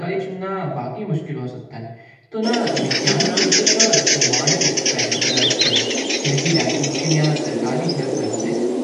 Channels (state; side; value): identical; both; correlation 1.00